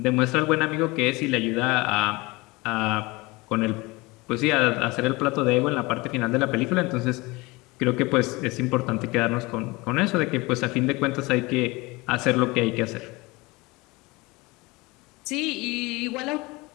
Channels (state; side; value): quieter; right; 23.6 dB